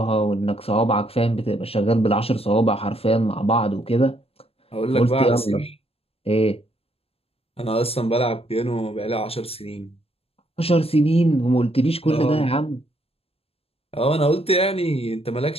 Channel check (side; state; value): right; late; 0.29 ms